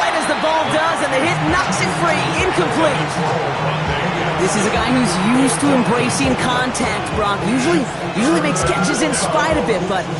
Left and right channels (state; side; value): identical; both; correlation 1.00